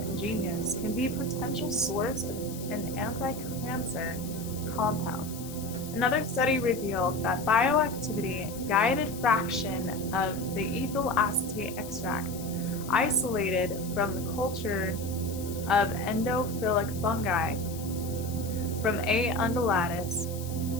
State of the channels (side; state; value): left; noise; hiss, 14 dB below the sound